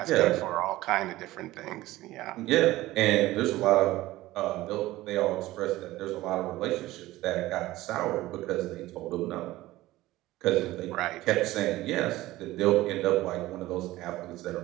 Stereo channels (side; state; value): left; quieter; 17.1 dB